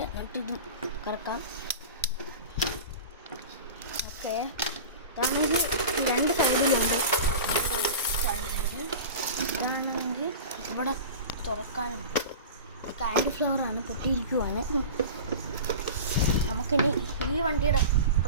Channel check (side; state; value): both; inverted; correlation -0.32